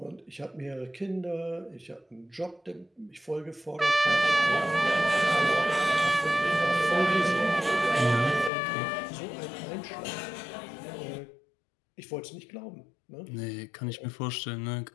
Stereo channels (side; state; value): right; drops out; at 8.5 s